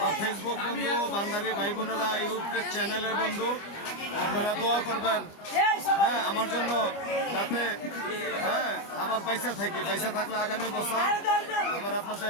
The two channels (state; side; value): late; right; 25 ms